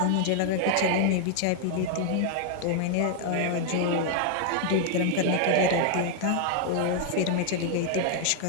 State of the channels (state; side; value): different; both; correlation 0.00